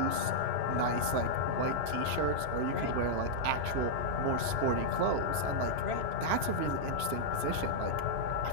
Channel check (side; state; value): left; late; 3.0 ms